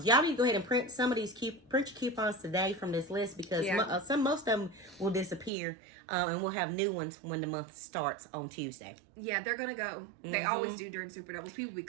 Y'all need to go ahead and print some of these print your coupons today from this list because most of them will disappear, and we'll have new ones when the month starts on Tuesday. Yeah, they're gonna go. They always do during Super Doubles. People be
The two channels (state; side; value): drops out; left; at 5.5 s